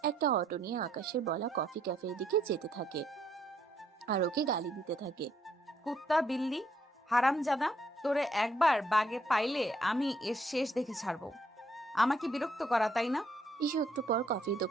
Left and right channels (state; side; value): normal; both; correlation 0.70